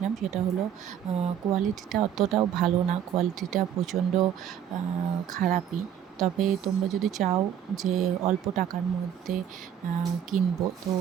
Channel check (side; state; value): left; quieter; 9.4 dB